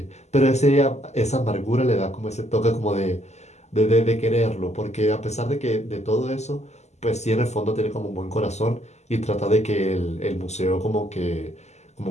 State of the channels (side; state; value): right; late; 0.33 ms